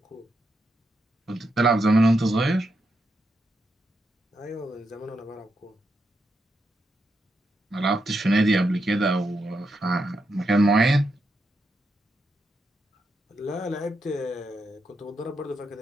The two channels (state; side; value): normal; both; correlation 0.83